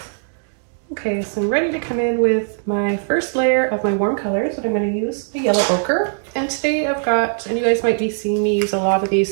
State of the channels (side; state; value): left; silent; digital silence